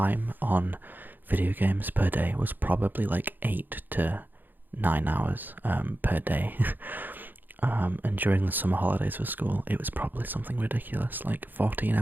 on video games per day was probably like 8 to 9 hours per day. And during the summer holidays for school, it was probably something ridiculous, like 14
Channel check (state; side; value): late; left; 0.089 ms